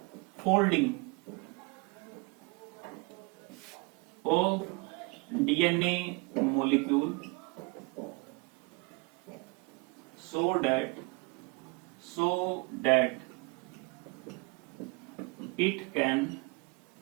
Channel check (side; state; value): left; quieter; 28.7 dB